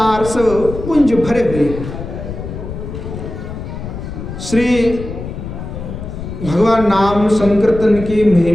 रस पुंज भरे हुए हैं। श्री भगवान नाम संकीर्तन की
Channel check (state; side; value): noise; left; rumble, 8 dB below the sound